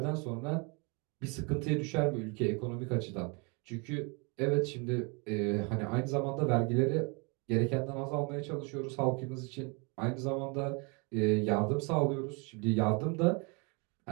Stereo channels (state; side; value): quieter; left; 32.2 dB